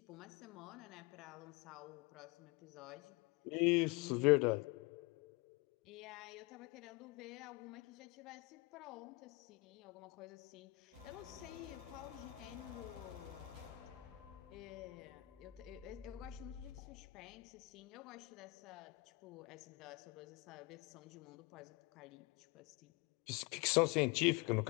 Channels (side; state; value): right; quieter; 22.4 dB